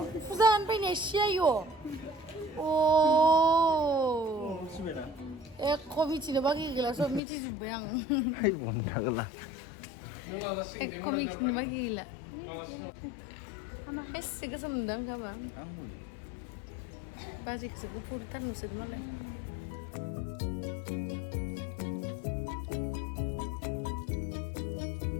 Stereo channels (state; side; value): drops out; right; at 7.2 s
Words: 부산 빼내 시야요. 오. 에, 코미치는 바기길라서 미치 좀 뭐양. Hai buang kagak 에, 코미치는 바기길라. 했으니까 섬당 가봐. 아직 지금 포르탄 노세도 말래.